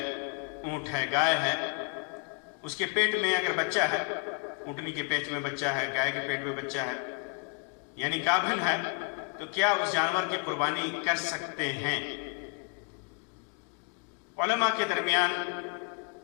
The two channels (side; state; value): right; quieter; 38.3 dB